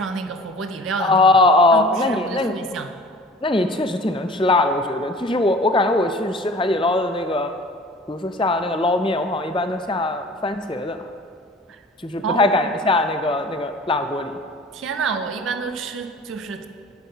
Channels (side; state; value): both; normal; correlation 0.45